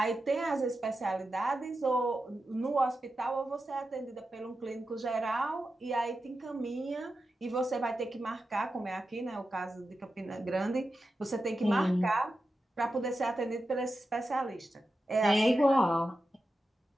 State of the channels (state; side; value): normal; both; correlation 0.91